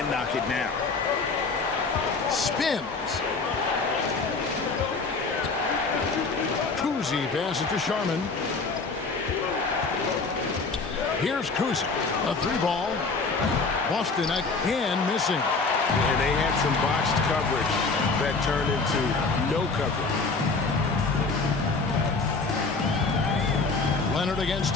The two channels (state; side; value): quieter; right; 4.1 dB